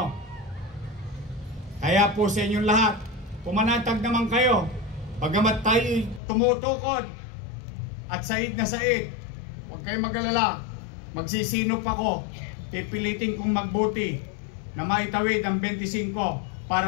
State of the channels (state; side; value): drops out; right; at 6.2 s